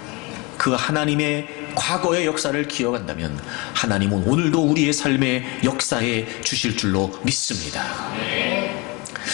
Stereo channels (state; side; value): quieter; right; 27.1 dB